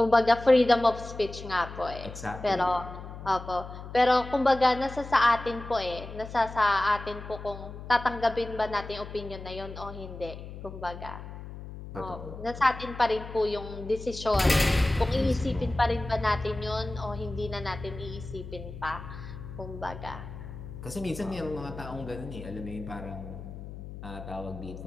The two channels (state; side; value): noise; left; hum, 12 dB below the sound